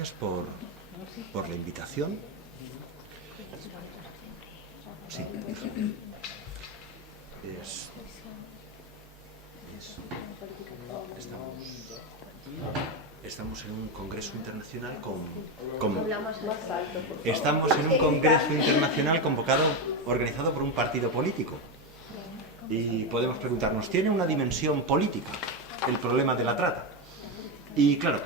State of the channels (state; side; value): normal; both; correlation 0.11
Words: por la invitación. Sí. Estamos en un congreso internacional organizado por un partido político. Y podemos preguntarnos, ¿tiene una dimensión política el problema de la trata? Y claro